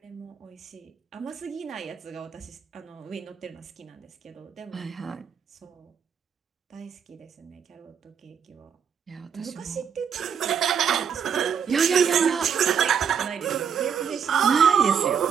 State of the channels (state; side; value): quieter; left; 7.4 dB